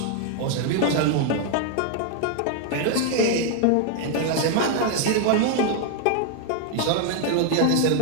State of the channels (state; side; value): different; both; correlation 0.00